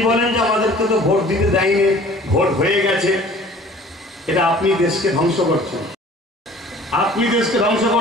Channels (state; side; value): normal; both; correlation 0.49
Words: বলেন যে আমাদেরকে তো ভোট দিতে দেয়নি, ভোট হয়ে গেছে, এটা আপনি দেশকে ধ্বংস করছেন, আপনি দেশকে ধ্বংস